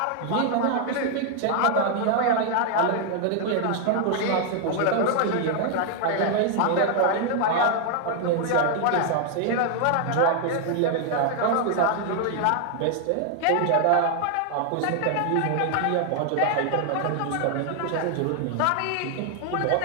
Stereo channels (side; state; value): both; different; correlation 0.00